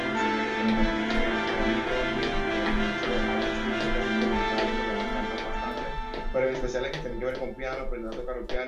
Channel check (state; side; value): identical; both; correlation 1.00